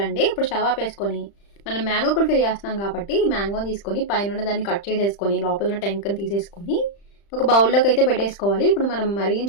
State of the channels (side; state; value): right; late; 35 ms